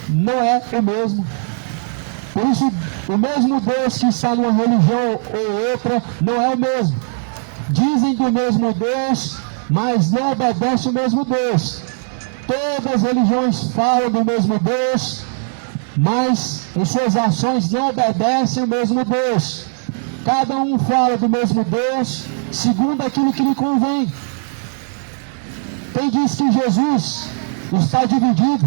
não é o mesmo. Por isso o mesmo Deus que está numa religião ou outra não é o mesmo. Dizem do mesmo Deus, mas não obedecem o mesmo Deus. Todas as religiões falam do mesmo Deus, mas em suas ações não obedecem o mesmo Deus. Cada um fala do mesmo Deus, segundo aquilo que lhe convém. Quem diz que Jesus está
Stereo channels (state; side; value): silent; left; 67 dB below the other